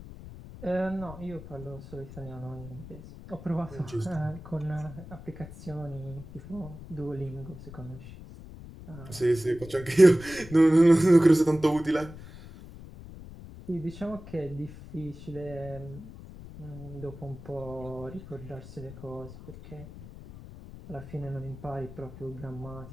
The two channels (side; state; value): left; noise; rumble, 15 dB below the sound